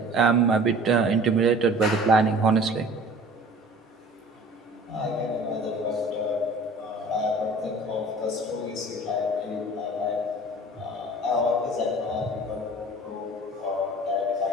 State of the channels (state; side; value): normal; both; correlation 0.45